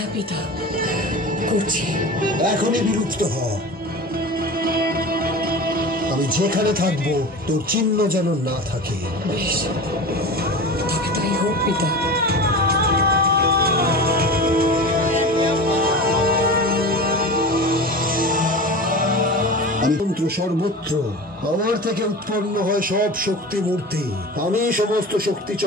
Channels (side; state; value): both; normal; correlation 0.32